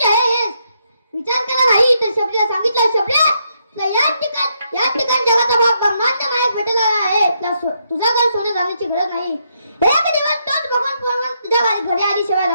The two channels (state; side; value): inverted; both; correlation -0.77